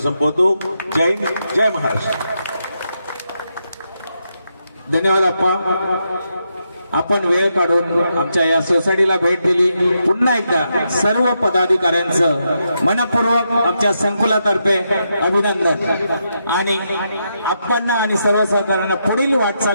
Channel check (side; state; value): both; inverted; correlation -0.82